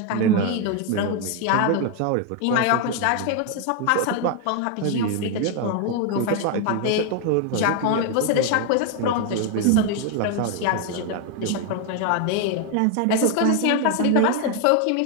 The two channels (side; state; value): both; different; correlation 0.01